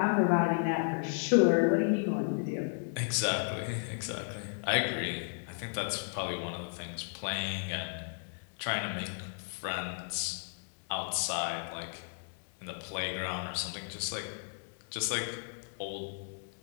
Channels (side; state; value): right; silent; digital silence